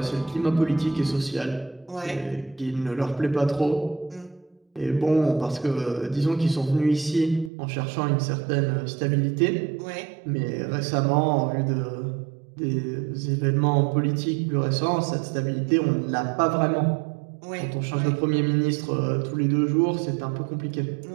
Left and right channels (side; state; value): left; drops out; at 7.5 s